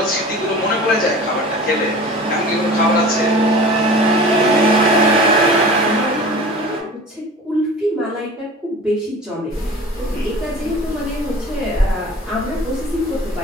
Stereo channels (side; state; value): both; normal; correlation 0.40